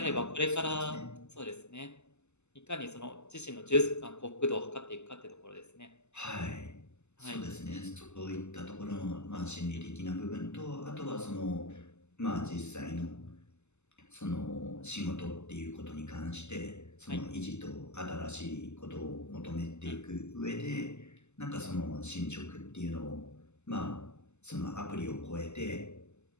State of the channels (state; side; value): late; right; 0.82 ms